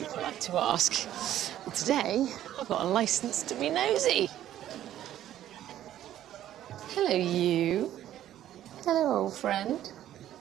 polite to ask. And today, I've got a licence to be nosy. Hello, you. Hello, old friend.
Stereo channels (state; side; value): quieter; left; 12.2 dB